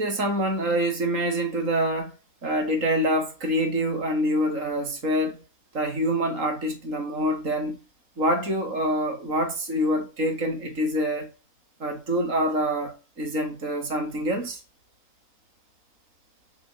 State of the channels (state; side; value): late; left; 3.8 ms